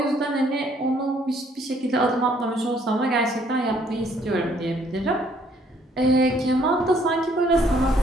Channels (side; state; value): both; normal; correlation 0.65